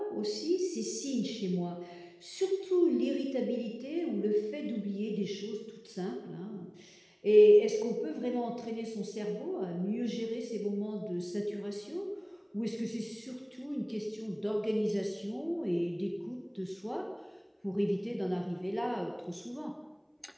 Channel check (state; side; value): identical; both; correlation 1.00